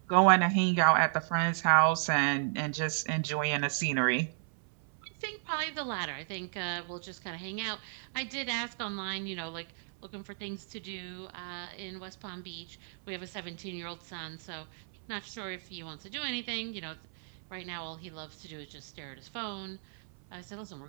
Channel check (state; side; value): silent; left; 55 dB below the other